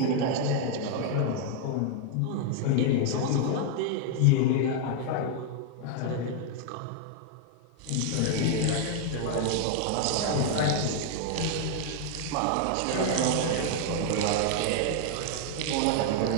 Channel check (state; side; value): different; both; correlation 0.00